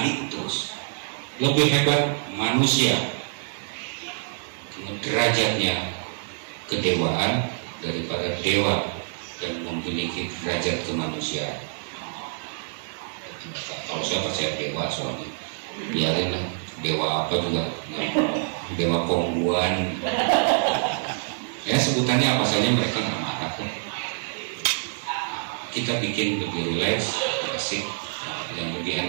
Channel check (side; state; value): left; silent; digital silence